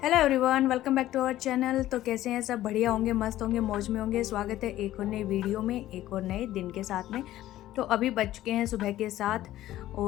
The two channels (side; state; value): right; quieter; 14.3 dB